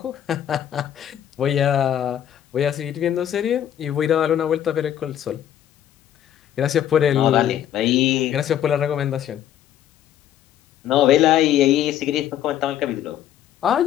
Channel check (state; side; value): quieter; right; 10.8 dB